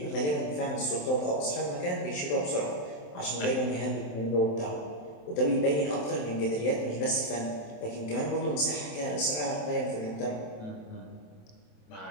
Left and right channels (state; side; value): late; right; 27 ms